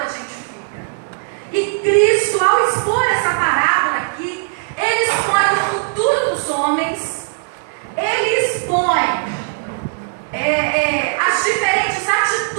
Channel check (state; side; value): silent; left; digital silence